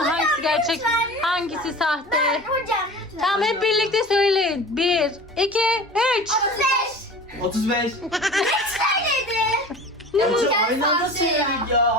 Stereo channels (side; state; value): both; normal; correlation 0.37